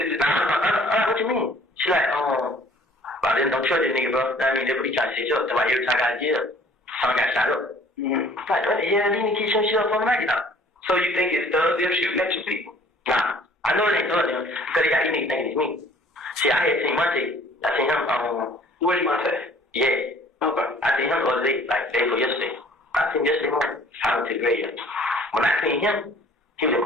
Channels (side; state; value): both; normal; correlation 0.54